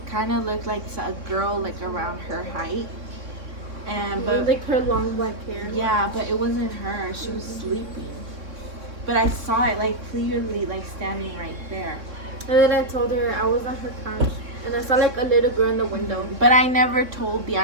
kind of looked like a girl like around her height. But like her long black hair. Yeah, but it wasn't her. She was sleeping. But I saw it like clearly, like standing right there. And then I told her I was on her couch, and I saw like a little girl in the window. But I never told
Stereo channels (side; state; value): left; late; 3.6 ms